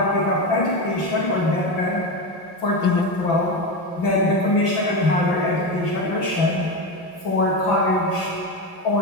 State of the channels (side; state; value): right; late; 5.9 ms